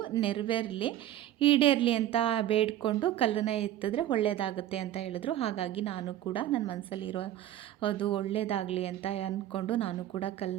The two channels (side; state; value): left; quieter; 12.6 dB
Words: ನೆರವೇರಲಿ, ಈಡೇರಲಿ ಅಂತ ಬೇಡಿಕೊಂಡು ಕಲ್ಲನ್ನು ಎತ್ತಿದ್ರೆ ಒಳ್ಳೆಯದಾಗುತ್ತೆ ಅಂತ ಹೇಳಿದ್ರು. ಹಾಗಾಗಿ ನಾನು ಕೂಡ ನನ್ನ ಮನಸ್ಸಲ್ಲಿರೋ ಅದು ಒಳ್ಳೆಯದಾಗಲಿ ಅಂತ ಅಂದ್ಕೊಂಡು ನಾನು ಕೂಡ